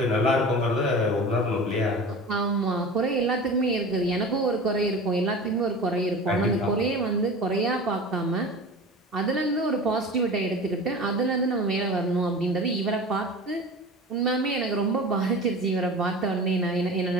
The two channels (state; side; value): normal; both; correlation 0.35